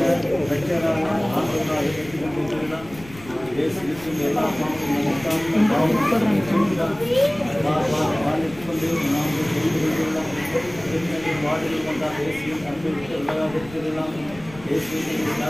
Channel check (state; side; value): noise; left; rumble, 19 dB below the sound